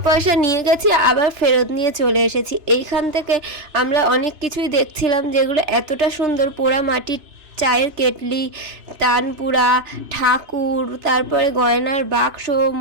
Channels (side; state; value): left; late; 3.0 ms